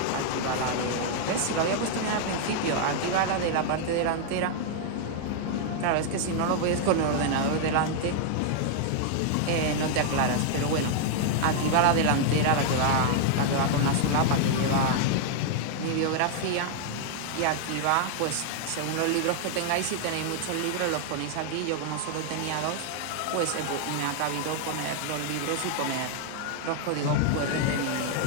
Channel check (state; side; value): different; both; correlation 0.00